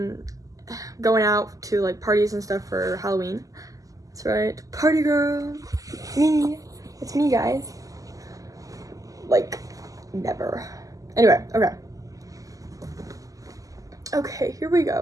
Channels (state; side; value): late; left; 0.17 ms